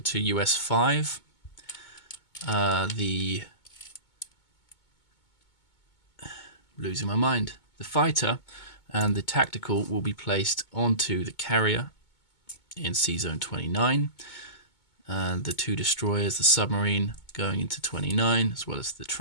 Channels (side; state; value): right; late; 2.2 ms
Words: US 5. Losing my mind. The fighter and the tactical will be placed onto the carrier in Sea Zone 29. and the 2 destroyers, the submarine going into 29, as well as the